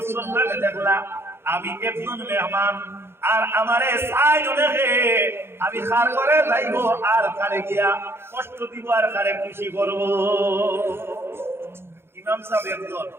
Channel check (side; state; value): left; late; 0.12 ms